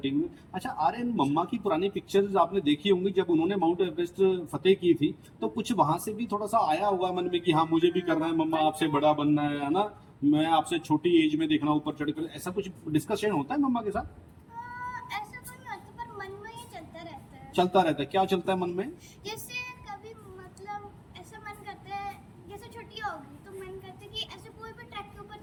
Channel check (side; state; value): both; identical; correlation 1.00